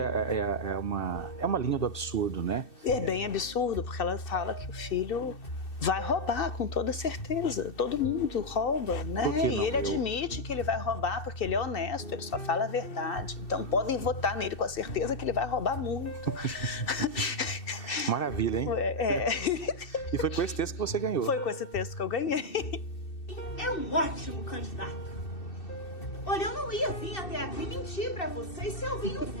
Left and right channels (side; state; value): right; late; 2.6 ms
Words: uma linha do absurdo, né? É bem absurdo, porque ela fala que o filho vai roubar, com toda certeza. Todo mundo rouba, né? E ele admite que ele vai roubar porque ele é honesto, ele só fala a verdade. Então podem votar nele com a certeza que ele vai roubar muito. Maravilha, hein? E foi com esse texto que você ganhou. Foi com esse texto que eu ganhei. É um ótimo candidato. Olha, eu não ia vir até aqui mentir pra vocês se eu vim não